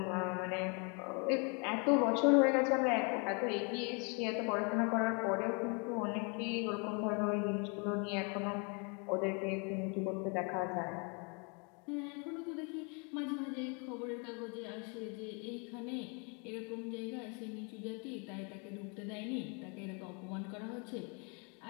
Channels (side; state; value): right; quieter; 34.7 dB